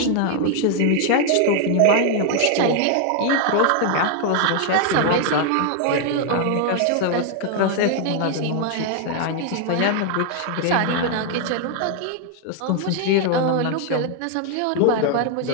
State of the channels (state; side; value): different; both; correlation 0.00